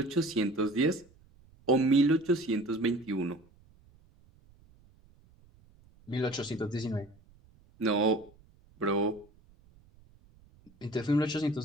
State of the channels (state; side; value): noise; right; rumble, 29 dB below the sound